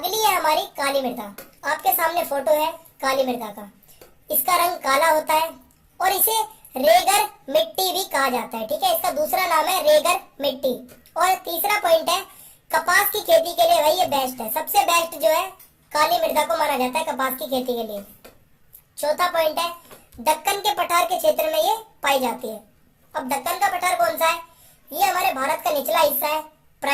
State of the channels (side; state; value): both; identical; correlation 1.00